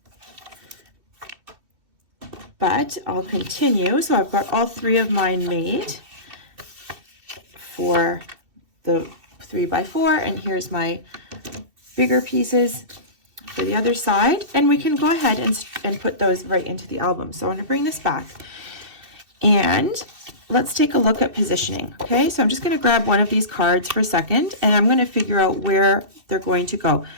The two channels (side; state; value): left; late; 2.6 ms